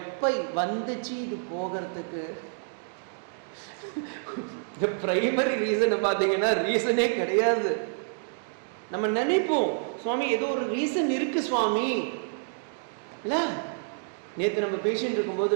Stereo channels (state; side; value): silent; left; digital silence